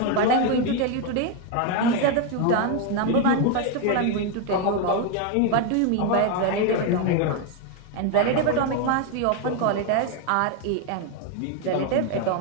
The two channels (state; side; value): different; both; correlation 0.01